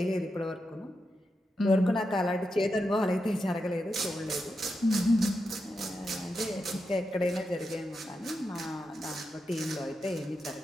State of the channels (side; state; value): both; normal; correlation 0.87